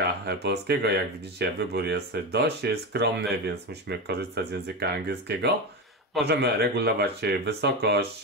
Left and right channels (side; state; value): both; normal; correlation 0.17